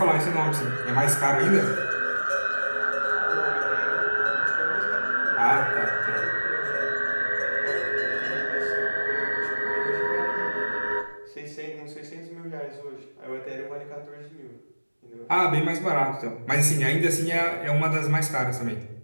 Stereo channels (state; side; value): inverted; both; correlation -1.00